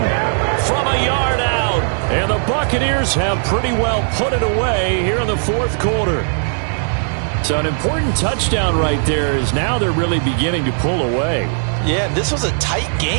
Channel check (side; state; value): left; silent; 68 dB below the other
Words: from a yard out. And the Buccaneers have pretty well put it away here in the 4th quarter. So an important touchdown right there is now they're really beginning to pull away. Yeah, this was a tight